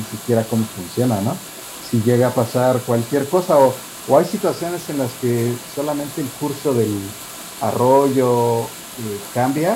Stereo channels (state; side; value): identical; both; correlation 1.00